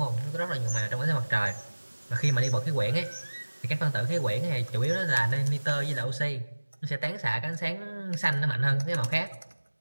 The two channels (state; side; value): inverted; both; correlation -1.00